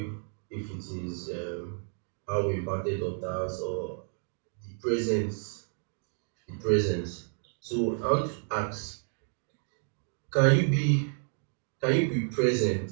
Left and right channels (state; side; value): silent; left; 57 dB below the other